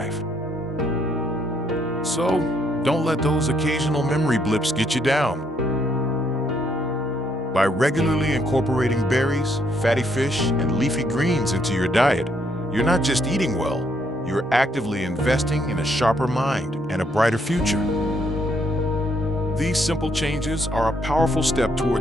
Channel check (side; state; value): both; normal; correlation 0.72